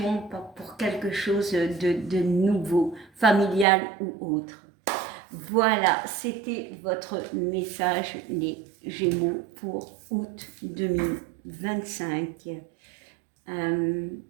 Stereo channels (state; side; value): drops out; left; at 3.7 s